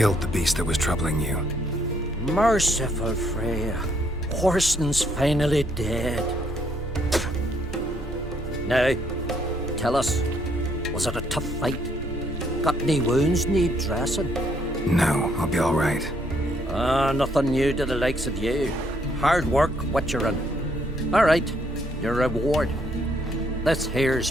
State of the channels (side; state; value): both; normal; correlation 0.70